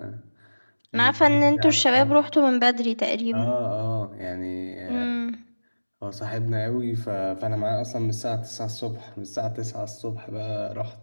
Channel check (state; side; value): inverted; both; correlation -1.00